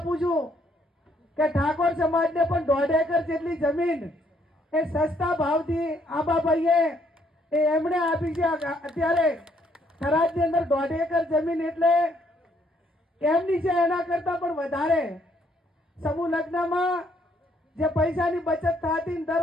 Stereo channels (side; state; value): both; normal; correlation 0.69